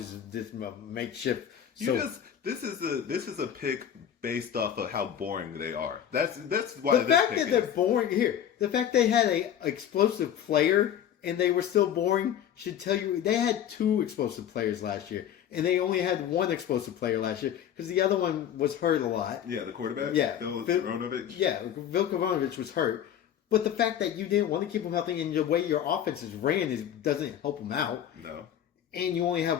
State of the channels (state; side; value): quieter; right; 9.8 dB